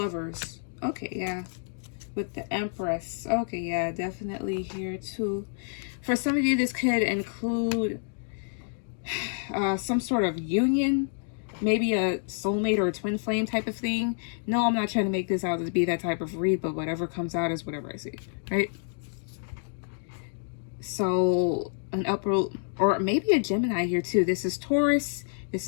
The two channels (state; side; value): silent; right; digital silence